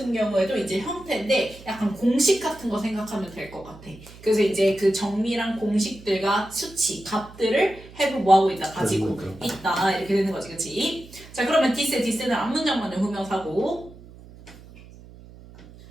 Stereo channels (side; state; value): right; noise; hum, 20 dB below the sound